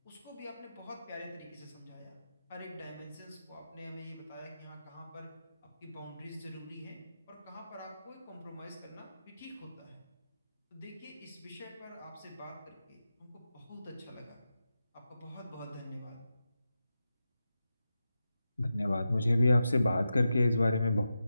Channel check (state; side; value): inverted; both; correlation -0.90